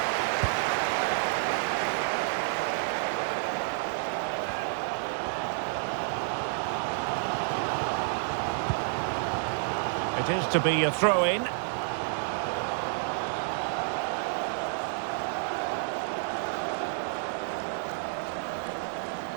It is to be a throw-in.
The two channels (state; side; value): silent; left; digital silence